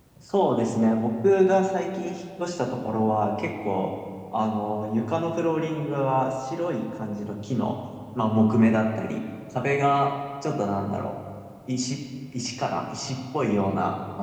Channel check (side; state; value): both; identical; correlation 1.00